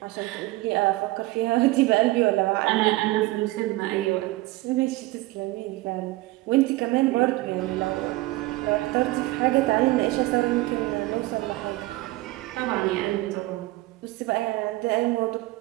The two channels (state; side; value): quieter; left; 19.6 dB